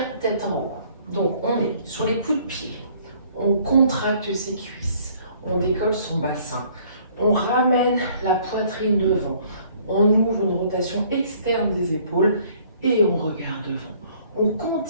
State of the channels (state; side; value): inverted; both; correlation -0.59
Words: tête en haut. Donc on est sur les coups de pied. On contracte ses cuisses, on décolle son bassin, on ramène la poitrine devant, on ouvre une rotation externe des épaules et on regarde devant. On